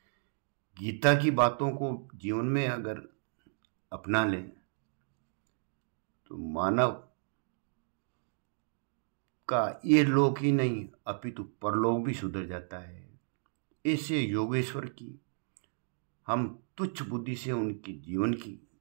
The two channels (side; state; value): left; silent; digital silence